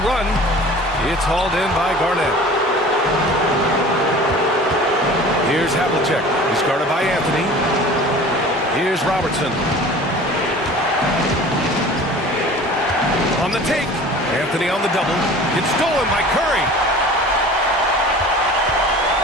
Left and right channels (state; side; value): normal; both; correlation 0.42